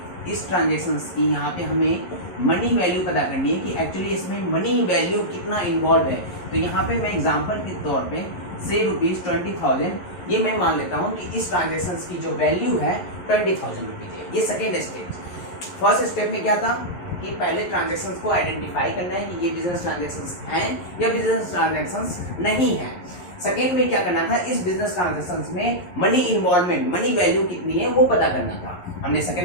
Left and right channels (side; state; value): right; late; 11 ms